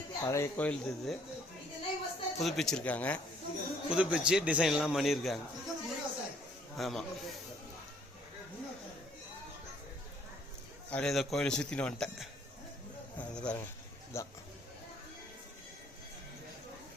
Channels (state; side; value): normal; both; correlation 0.63